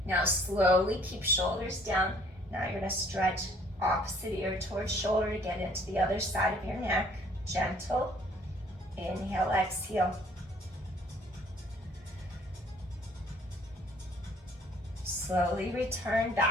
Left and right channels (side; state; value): both; normal; correlation 0.58